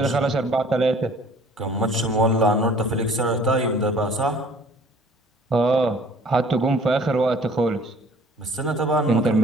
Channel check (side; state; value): both; normal; correlation 0.53